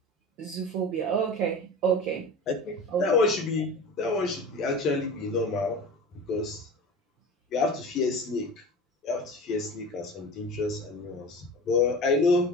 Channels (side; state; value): both; normal; correlation 0.33